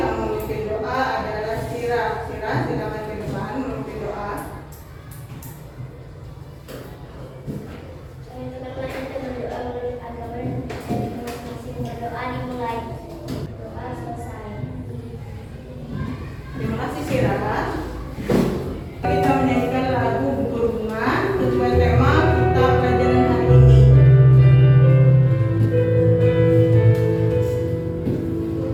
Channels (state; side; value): identical; both; correlation 1.00